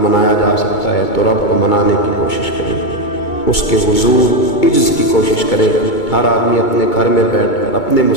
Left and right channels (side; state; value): right; late; 2.2 ms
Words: منایا جا سکتا ہے، تو رب کو منانے کی کوشش کریں، اس کے حضور عجز کی کوشش کرے۔ ہر آدمی اپنے گھر میں بیٹھ کر، اپنے